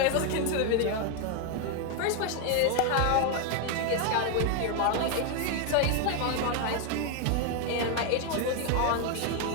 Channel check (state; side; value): different; both; correlation 0.01